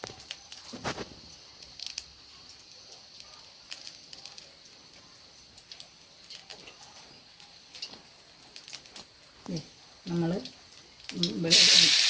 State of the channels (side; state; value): both; identical; correlation 1.00